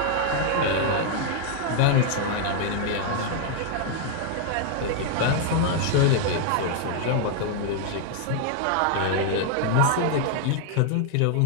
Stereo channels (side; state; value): both; different; correlation 0.00